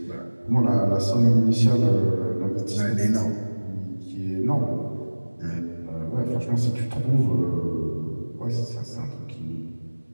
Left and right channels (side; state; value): both; inverted; correlation -1.00